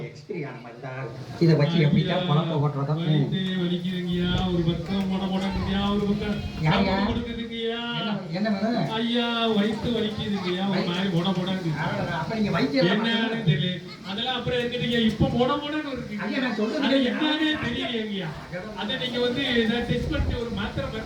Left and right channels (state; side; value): identical; both; correlation 1.00